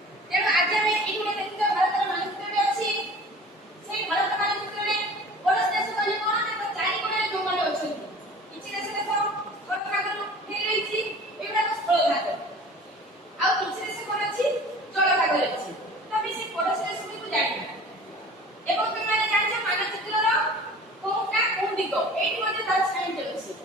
ତେଣୁ ଆଜି ଆମେ ଏଇଠି ଦେଖିଥିବା ଭାରତର ମାନଚିତ୍ରରେ ଅଛି। ସେଇ ଭାରତ ମାନଚିତ୍ରରେ ପଡ଼ୋଶୀ ଦେଶ କହିଲେ କଣ ନା ଚାରି କୋଣରେ ଯୋଉମାନେ ଅଛନ୍ତି କିଛି ଦେଶ ସ୍ଥଳ ଭାଗରୁ ହେଇଯାଇଛି ଏଗୁଡ଼ାକ ସ୍ଥଳ ଭାଗ ଆଉ କିଛି ଦେଶ କଣ ଅଛି ଜଳ ଭାଗରେ ଅଛି। ତ ଆମେ ସେଇ ପଡ଼ୋଶୀ ଦେଶଗୁଡ଼ିକୁ ଜାଣିବା ଏବଂ ତୁମେମାନେ ଜାଣିଛ ମାନଚିତ୍ରର କୋଉଟା କୋଉ ଦିଗ ଏଇଠି ମଧ୍ୟ ତାର ସାଇନ୍ ଅଛି।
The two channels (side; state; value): both; normal; correlation 0.43